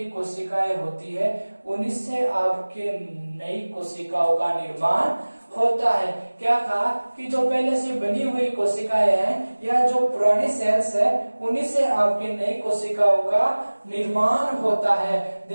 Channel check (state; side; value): inverted; both; correlation -1.00